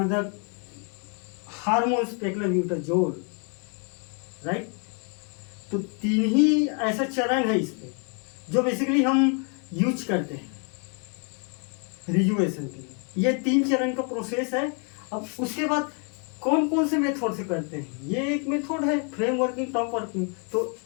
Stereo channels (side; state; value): right; quieter; 38.6 dB